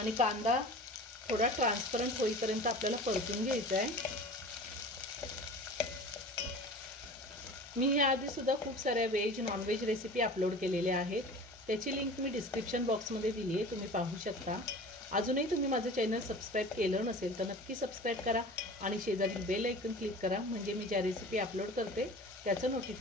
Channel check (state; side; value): normal; both; correlation 0.38